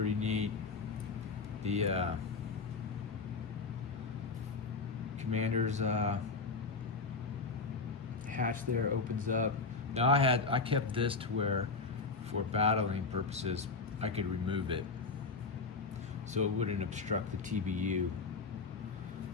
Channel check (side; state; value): right; quieter; 4.2 dB